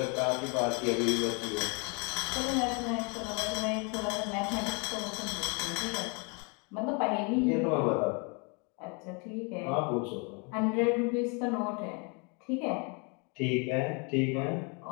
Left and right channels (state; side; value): quieter; right; 33.7 dB